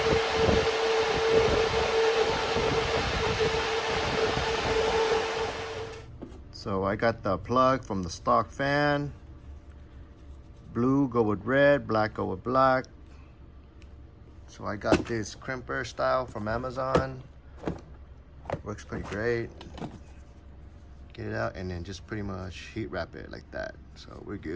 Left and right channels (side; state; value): both; identical; correlation 1.00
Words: So I got the plug from the stock fan. Blue go with red, black go with black. So I got this crimper style from Amazon. Works pretty great. Get it out and then just pretty much heat wrap it like that, so we're